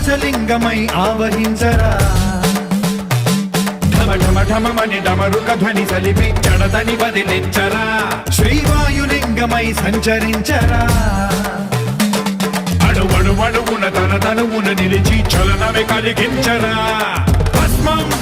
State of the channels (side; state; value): both; identical; correlation 1.00